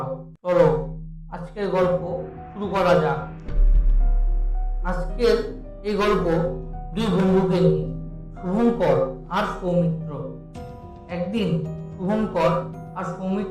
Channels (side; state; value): both; identical; correlation 1.00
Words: চলো আজকের গল্প শুরু করা যাক। আজকের এই গল্প দুই বন্ধুকে নিয়ে, শুভঙ্কর আর সৌমিত্র। একদিন শুভঙ্কর আর